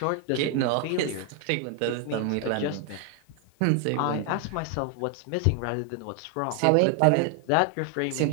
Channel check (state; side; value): different; both; correlation 0.00